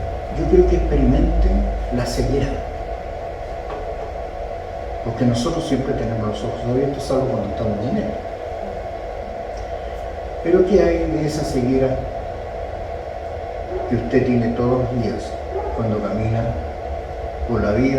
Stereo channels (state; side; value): identical; both; correlation 1.00